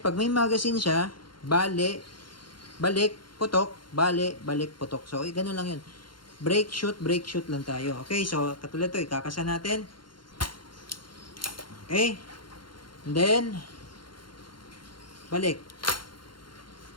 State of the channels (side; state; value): right; late; 0.72 ms